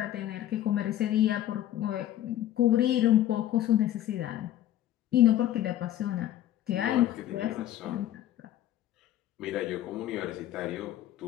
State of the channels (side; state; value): right; quieter; 12.6 dB